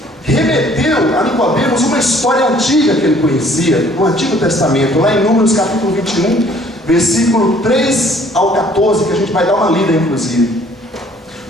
remeteu a Nicodemos uma história antiga que ele conhecia, no Antigo Testamento, lá em Números capítulo 21, versículo 3 ao 14, que a gente vai dar uma lida inclusive.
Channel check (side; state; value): both; normal; correlation 0.58